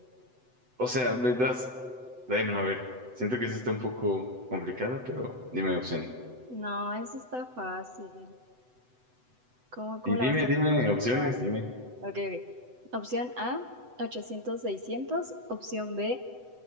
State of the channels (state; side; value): late; left; 8.0 ms